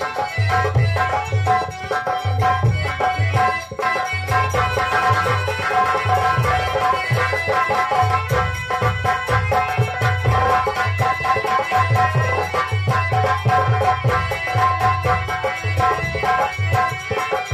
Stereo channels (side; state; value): both; identical; correlation 1.00